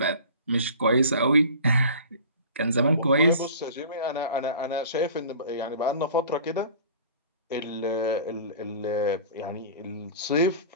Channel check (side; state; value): both; inverted; correlation -0.41